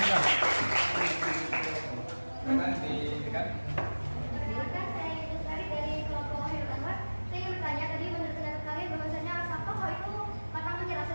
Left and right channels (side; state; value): both; inverted; correlation -1.00